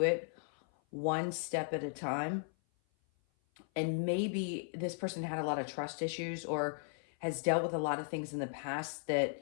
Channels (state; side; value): silent; right; 54 dB below the other